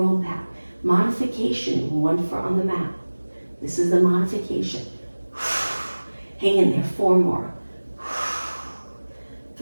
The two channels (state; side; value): inverted; both; correlation -1.00